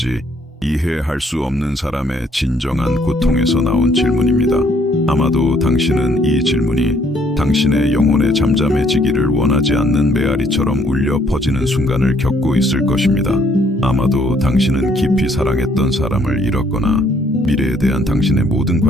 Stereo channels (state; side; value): normal; both; correlation 0.66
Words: 이해할 수 없는 사람의 진정한 고통에서 나온 질문입니다. 아마도 당신은 이 질문이 당신의 영혼에 잠잠해지기를 원하지 않는 메아리처럼 울려 퍼지는 순간을 겪고 있을 것입니다. 아마도 당신은 깊이 사랑했던 사람을 잃었거나 미래에 대한 당신의 모든